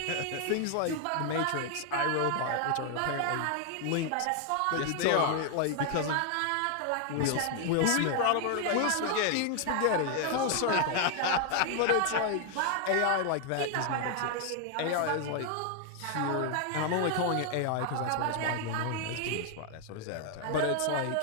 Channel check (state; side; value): different; both; correlation 0.00